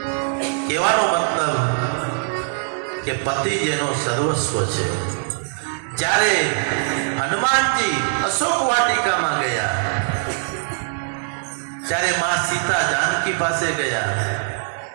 કહેવાનો મતલબ કે પતિ જેનો સર્વસ્વ છે. જ્યારે હનુમાનજી અશોક વાટિકામાં ગયા ત્યારે માં સીતા જાનકી પાસે ગયા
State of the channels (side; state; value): left; silent; digital silence